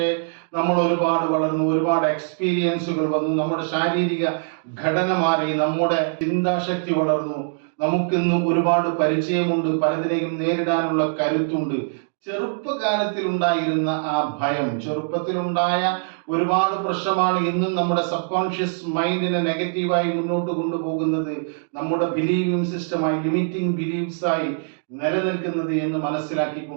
നമ്മൾ ഒരുപാട് വളർന്നു, ഒരുപാട് എക്സ്പീരിയൻസുകൾ വന്നു, നമ്മുടെ ശാരീരിക ഘടന മാറി, നമ്മുടെ ചിന്താശക്തി വളർന്നു, നമുക്കിന്ന് ഒരുപാട് പരിചയമുണ്ട്, പലതിനെയും നേരിടാനുള്ള കരുത്തുണ്ട്. ചെറുപ്പകാലത്തിൽ ഉണ്ടായിരുന്ന ആ ഭയം, ചെറുപ്പത്തിലുണ്ടായ ഒരുപാട് പ്രശ്നമാണ് ഇന്നും നമ്മുടെ സബ് കോൺഷ്യസ് മൈൻഡിനെ നെഗറ്റീവായി മുന്നോട്ട് കൊണ്ടുപോകുന്നത്, നമ്മുടെ ബിലീവിംഗ് സിസ്റ്റമായി, ലിമിറ്റിംഗ് ബിലീഫ്സ് ആയി നിലനിൽക്കുന്നത് എന്ന്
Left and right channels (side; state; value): left; silent; digital silence